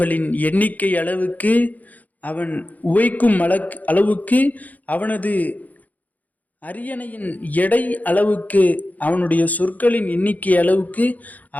எண்ணிக்கை அளவுக்கு, அவன் உவைக்கும் அளவுக்கு, அவனது அரியணையின் எடை அளவுக்கு, அவனுடைய சொற்களின் எண்ணிக்கை அளவுக்கு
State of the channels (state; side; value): late; right; 0.079 ms